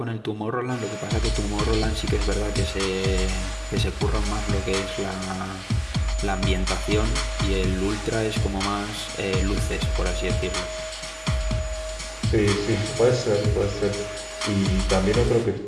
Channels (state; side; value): identical; both; correlation 1.00